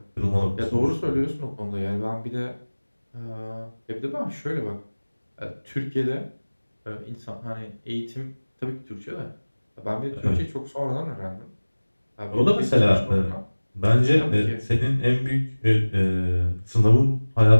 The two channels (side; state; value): both; inverted; correlation -1.00